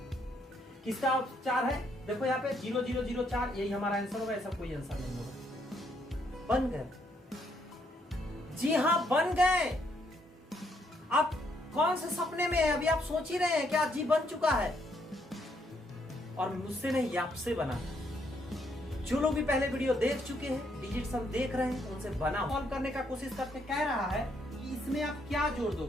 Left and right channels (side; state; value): both; normal; correlation 0.72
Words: किसका 4 है? देखो यहाँ पे 0 0 0 4, यही हमारा आंसर होगा, ऐसा कोई आंसर नहीं होगा। बन गए, जी हाँ बन गए। आप कौन से सपने में है? अभी आप सोच ही रहे हैं क्या जी बन चुका है? और मुझसे नहीं, आपसे बना। जो लोग भी पहले वीडियो देख चुके हैं, डिजिट सम देख रहे हैं, उनसे बना सॉल्व करने का कोशिश करते। कह रहा है कि इसमें आप क्या जोड़